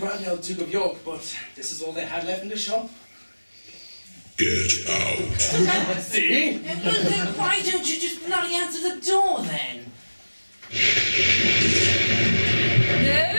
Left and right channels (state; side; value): inverted; both; correlation -1.00